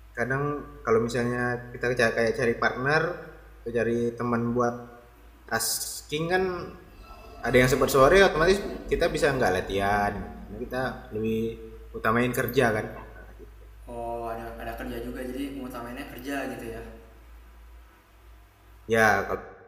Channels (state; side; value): identical; both; correlation 1.00